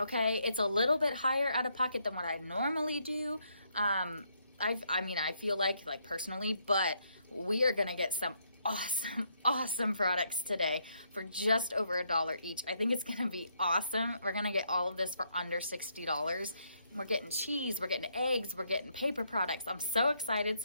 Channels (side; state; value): both; inverted; correlation -0.74